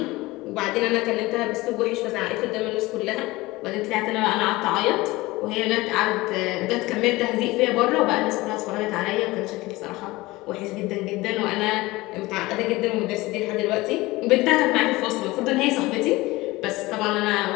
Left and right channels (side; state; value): right; quieter; 20.4 dB